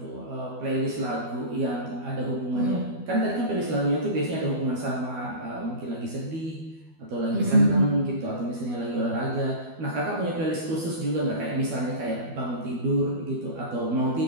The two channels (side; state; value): left; late; 12 ms